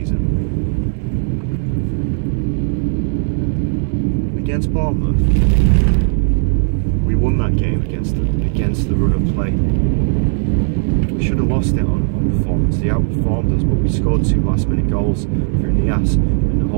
Against Bournemouth, we won that game against the run of play. We should have lost it on performance. They outperformed us, but we scored 2 last-minute goals through Nias, and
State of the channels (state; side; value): silent; left; digital silence